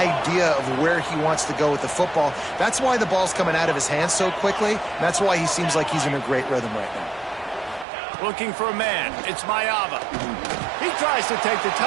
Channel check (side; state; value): left; drops out; at 7.9 s